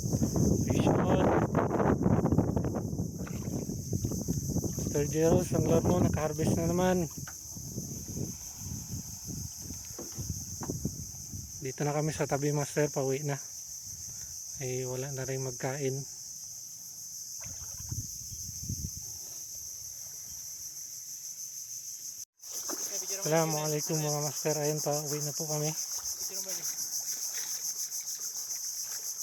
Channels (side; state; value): both; identical; correlation 1.00